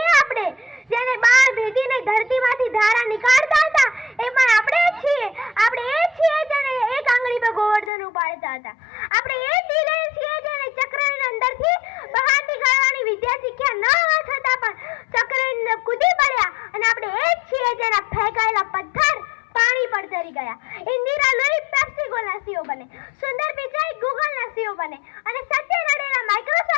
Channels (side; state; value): right; drops out; at 7.9 s